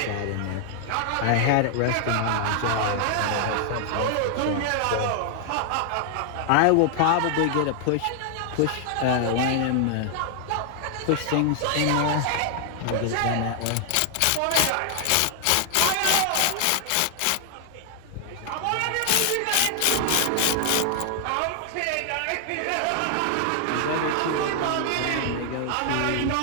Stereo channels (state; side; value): different; both; correlation 0.00